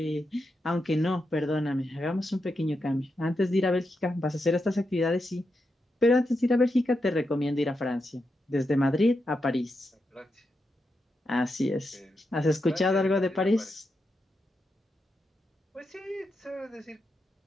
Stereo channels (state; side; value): normal; both; correlation 0.86